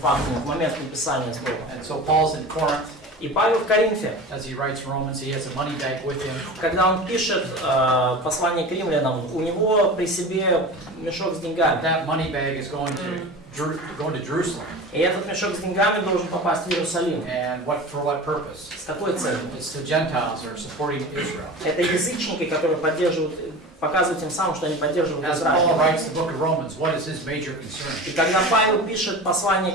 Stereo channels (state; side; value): normal; both; correlation 0.33